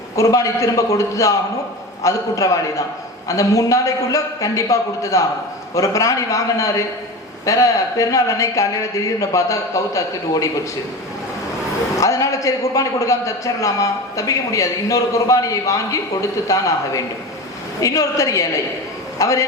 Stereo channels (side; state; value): both; normal; correlation 0.29